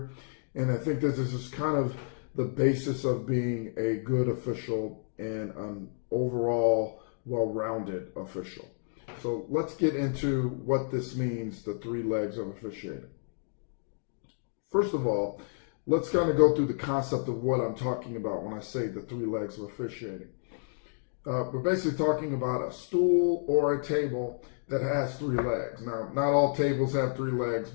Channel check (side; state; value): right; silent; digital silence